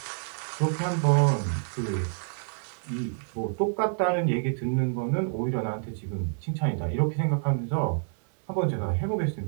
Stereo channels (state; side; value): silent; left; digital silence